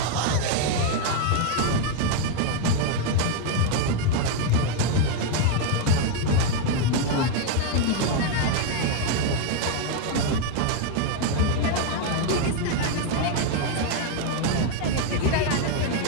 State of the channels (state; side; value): different; both; correlation 0.01